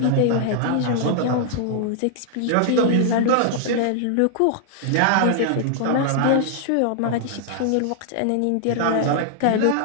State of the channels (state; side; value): different; both; correlation -0.01